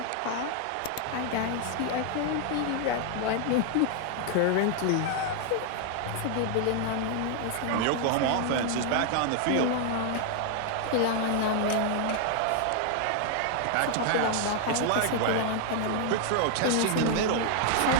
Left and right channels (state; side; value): different; both; correlation 0.00